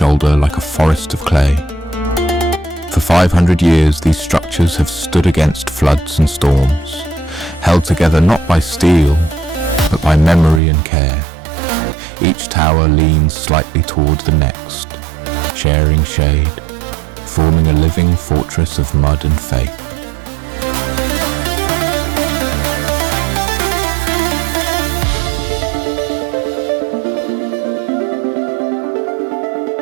like a forest of clay. For 500 years, these structures have stood against floods and storms, held together not by steel, but by memory and care. Each tower leans slightly toward the next, sharing shade, forming a living fortress of mud and faith.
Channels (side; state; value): left; drops out; at 10.6 s